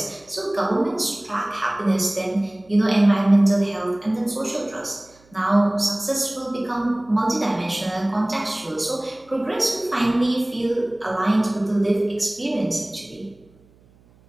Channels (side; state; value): right; noise; hum, 30 dB below the sound